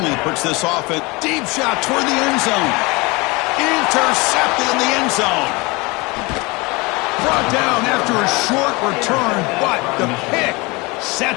puts this offense. Deep shot toward the end zone. Intercepted in the end zone. Brought down after a short return, but the pick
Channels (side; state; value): right; quieter; 25.3 dB